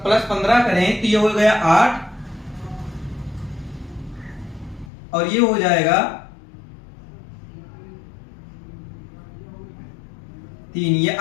15 करें तो ये हो गया 8 और ये हो जाएगा 3। ये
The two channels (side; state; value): right; drops out; at 4.9 s